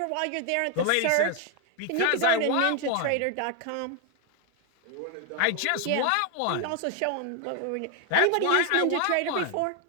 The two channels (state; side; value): different; both; correlation 0.00